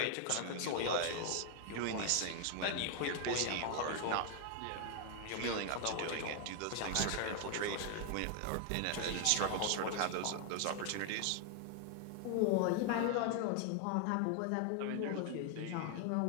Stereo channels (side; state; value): both; different; correlation 0.00